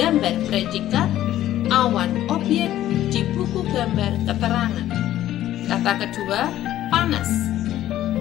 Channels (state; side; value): quieter; right; 13.2 dB